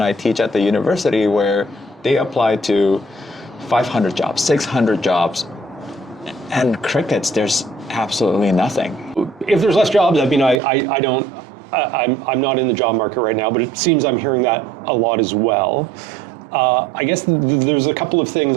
I teach at the university, where they apply to 500 jobs, 600 jobs, and crickets, there's absolutely nothing. If there's less jobs, I mean, I'm not in the job market right now, but it seems I'm hearing that a lot as well. I guess there's a couple of things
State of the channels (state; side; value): drops out; left; at 10.6 s